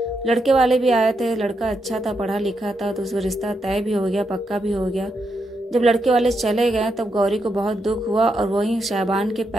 लड़के वाले भी आए थे, लड़का अच्छा था, पढ़ा लिखा था, तो उसका रिश्ता तय भी हो गया, पक्का भी हो गया। जब लड़के वाले चले गए तब गौरी को बहुत दुख हुआ और वहीं शहबान के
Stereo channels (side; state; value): both; normal; correlation 0.82